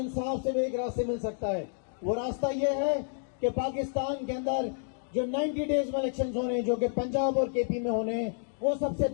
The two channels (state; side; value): silent; right; digital silence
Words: से भी एक रास्ते मिल सकता है। वो रास्ता ये है कि पाकिस्तान के अंदर जो 90 डेज में इलेक्शंस होने हैं, जो कि पंजाब और केपी में होने हैं, वो सबसे